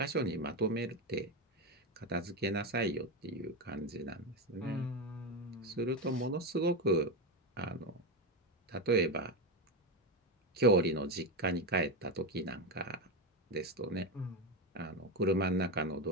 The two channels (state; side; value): normal; both; correlation 0.14